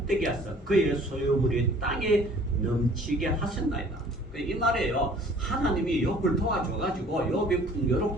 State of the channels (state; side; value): normal; both; correlation 0.52